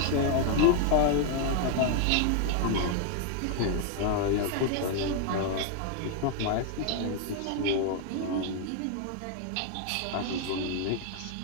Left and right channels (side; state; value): both; different; correlation 0.00